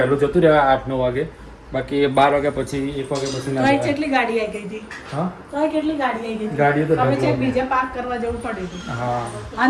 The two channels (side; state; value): both; identical; correlation 1.00